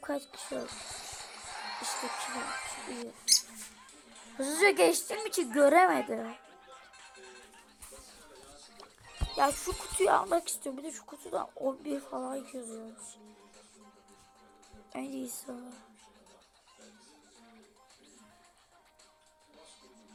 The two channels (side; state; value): both; identical; correlation 1.00